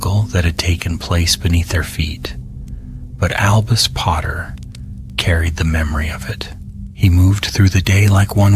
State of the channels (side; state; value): both; identical; correlation 1.00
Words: that had taken place beneath their feet. But Albus Potter carried the memory of it. He moved through the day like